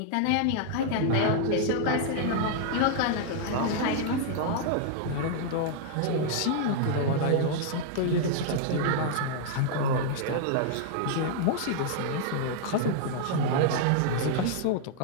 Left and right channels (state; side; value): different; both; correlation -0.01